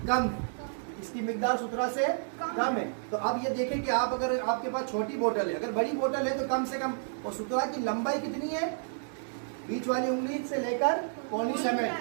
कम, इसकी मिकदार सुतरा से कम है। तो अब ये देखें कि आप अगर आपके पास छोटी बोतल है, अगर बड़ी बोतल है तो कम से कम, और सुतरा की लंबाई कितनी है? बीच वाली उंगली से लेकर कोहनी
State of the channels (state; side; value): silent; left; digital silence